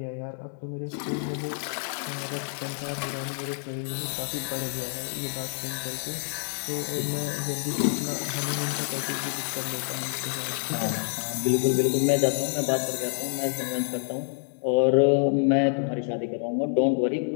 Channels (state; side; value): silent; right; digital silence